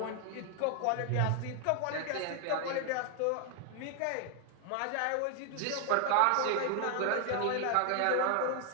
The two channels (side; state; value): both; different; correlation 0.00